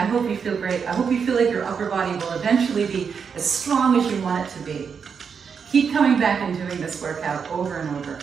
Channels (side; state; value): left; quieter; 6.3 dB